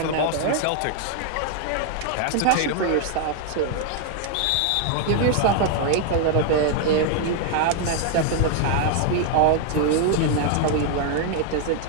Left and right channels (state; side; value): different; both; correlation 0.00